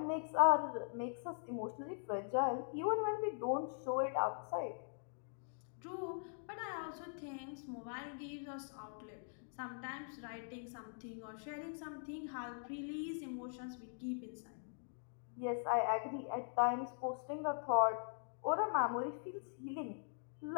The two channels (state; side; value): silent; right; digital silence